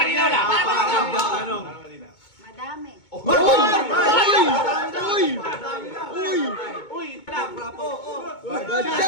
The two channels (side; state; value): right; late; 2.2 ms